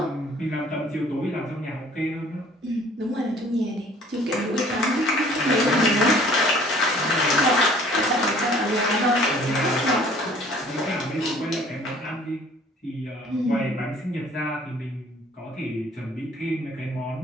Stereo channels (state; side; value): normal; both; correlation 0.54